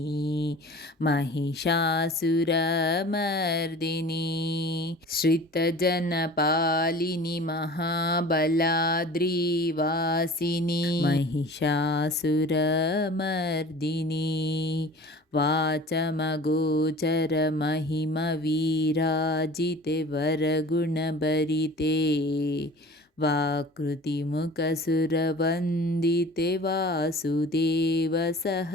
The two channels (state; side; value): normal; both; correlation 0.42